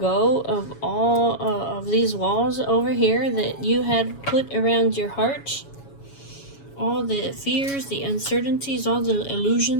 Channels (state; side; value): late; right; 7.2 ms